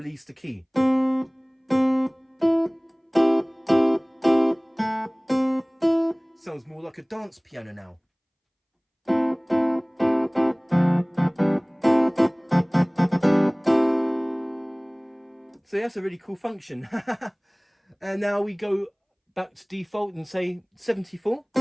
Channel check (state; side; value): identical; both; correlation 1.00